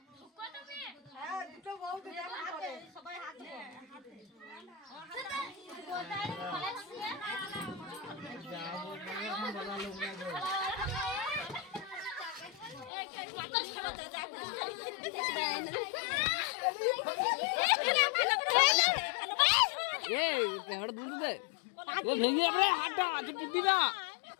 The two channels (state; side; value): drops out; right; at 12.9 s